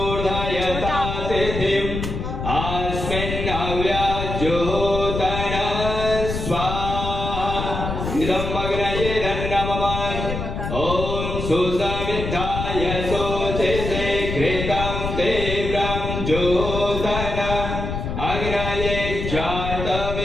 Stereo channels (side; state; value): left; noise; rumble, 4 dB below the sound